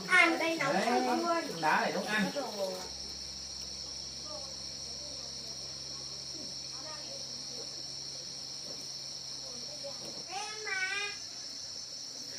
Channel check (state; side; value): identical; both; correlation 1.00